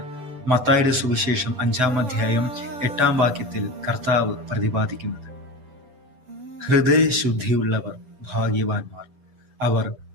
മത്തായിയുടെ സുവിശേഷം 5-ാം അധ്യായം 8-ാം വാക്യത്തിൽ കർത്താവ് പ്രതിപാദിക്കുന്നത്. ഹൃദയശുദ്ധിയുള്ളവർ ഭാഗ്യവാന്മാർ, അവർ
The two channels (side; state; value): left; late; 7.1 ms